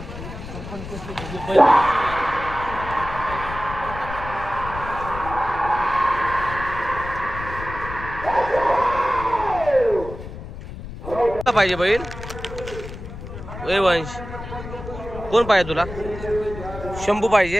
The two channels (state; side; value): noise; left; rumble, 11 dB below the sound